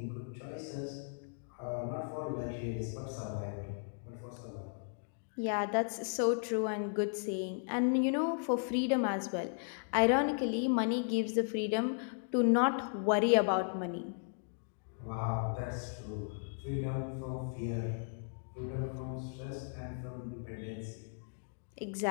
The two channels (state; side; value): silent; right; digital silence